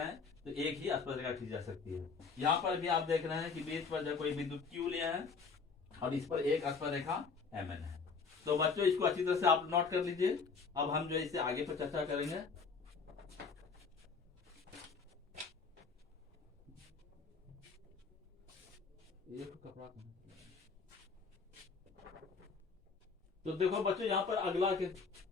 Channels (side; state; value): right; quieter; 5.0 dB